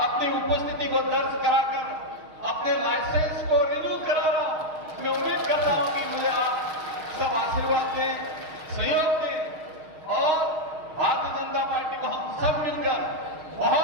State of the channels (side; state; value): left; late; 6.4 ms